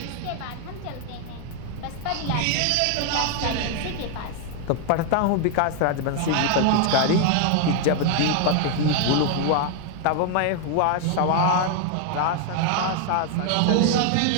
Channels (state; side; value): different; both; correlation 0.00